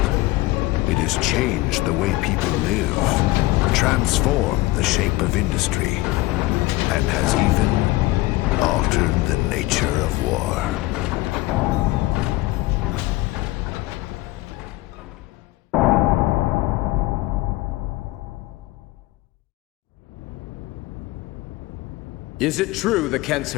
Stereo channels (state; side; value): quieter; right; 19.5 dB